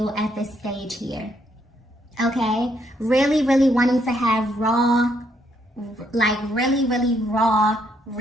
at this stage here. Okay, really, really wanting to have raw, like really, really raw,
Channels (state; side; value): normal; both; correlation 0.73